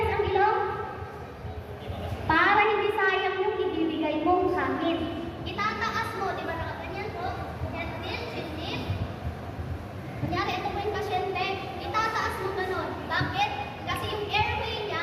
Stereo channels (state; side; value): identical; both; correlation 1.00